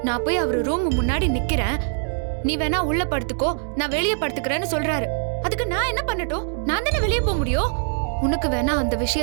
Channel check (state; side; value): silent; left; digital silence